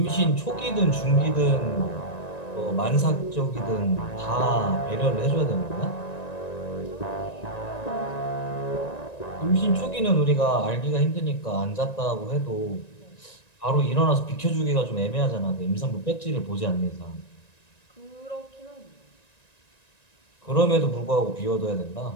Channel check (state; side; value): late; right; 1.9 ms